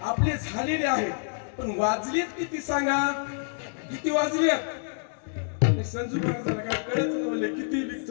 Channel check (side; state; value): right; silent; digital silence